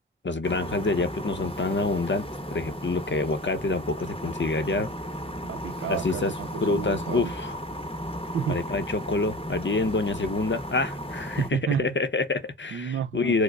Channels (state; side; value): normal; both; correlation 0.34